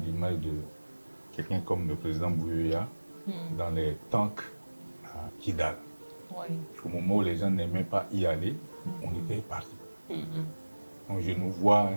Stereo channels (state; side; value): inverted; both; correlation -1.00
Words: l'image de quelqu'un comme le président Bouyoya dans les tanks à Kidal. Oui. Au moment où les gens n'aimaient pas y aller, on était parti. Donc je nous vois